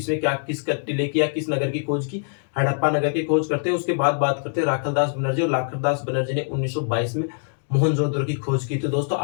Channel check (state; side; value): silent; right; digital silence